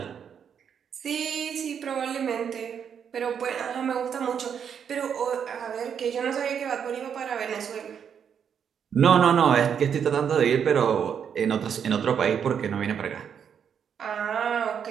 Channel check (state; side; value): quieter; left; 7.7 dB